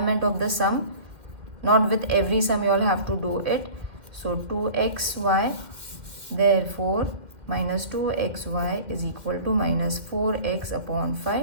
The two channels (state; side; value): late; left; 2.1 ms